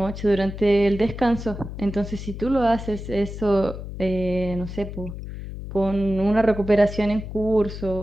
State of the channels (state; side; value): noise; left; hum, 9 dB below the sound